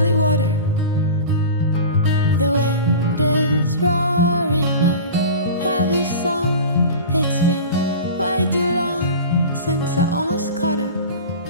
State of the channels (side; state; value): both; inverted; correlation -0.34